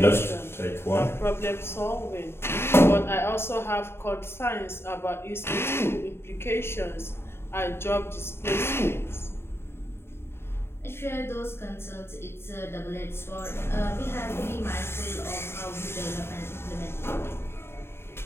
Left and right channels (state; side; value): late; right; 0.12 ms